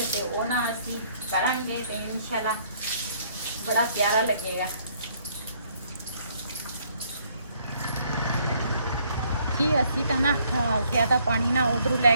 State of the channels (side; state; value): both; inverted; correlation -0.65